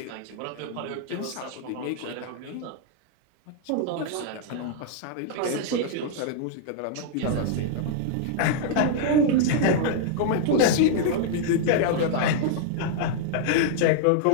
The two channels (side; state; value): both; different; correlation -0.01